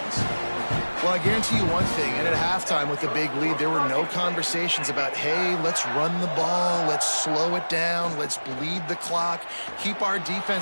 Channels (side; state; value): both; inverted; correlation -1.00